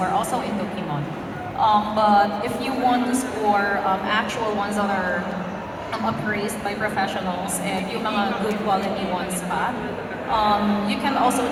also into kimono. But if you want to score actual ones that are appraised by professionals and yung mga good quality ones pa, you can also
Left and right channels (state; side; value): identical; both; correlation 1.00